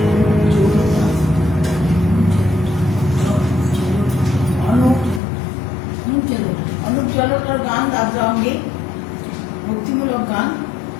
অনুপ জলোটার গান আদ্রা অঙ্গে ভক্তিমূলক গান।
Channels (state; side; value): drops out; right; at 5.2 s